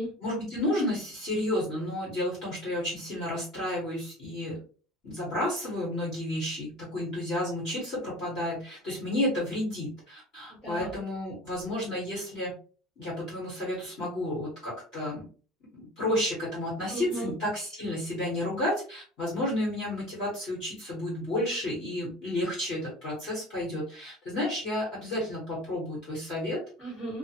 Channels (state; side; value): normal; both; correlation 0.38